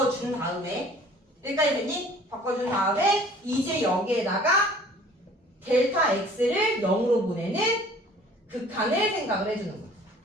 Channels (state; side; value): normal; both; correlation 0.51